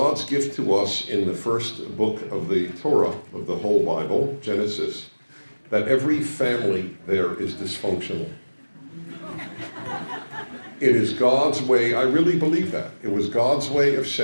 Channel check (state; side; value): inverted; both; correlation -1.00